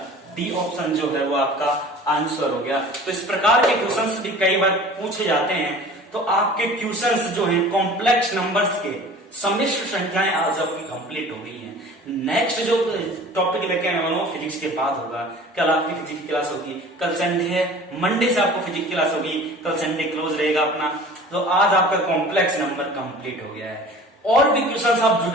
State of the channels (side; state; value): both; normal; correlation 0.44